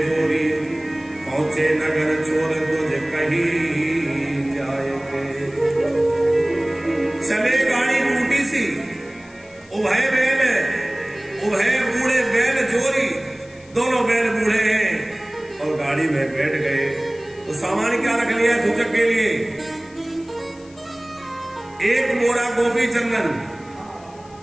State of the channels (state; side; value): noise; left; hiss, 26 dB below the sound